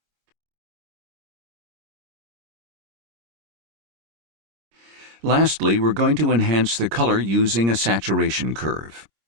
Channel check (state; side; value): late; left; 26 ms